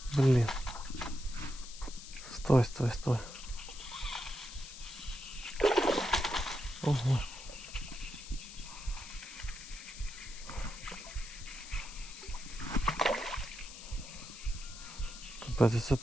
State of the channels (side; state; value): left; noise; hiss, 13 dB below the sound